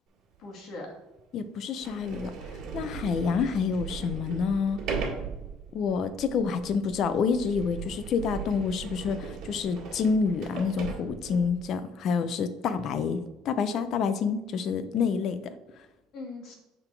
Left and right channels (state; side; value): quieter; right; 4.5 dB